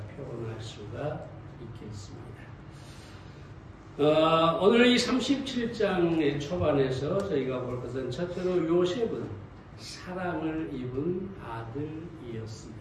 표현할 수가 있겠습니다. 오늘 이 37장의 초반에서 저희가 볼 것은 첫째로 요셉은 사랑을 입은 아들이었습니다.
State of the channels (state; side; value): identical; both; correlation 1.00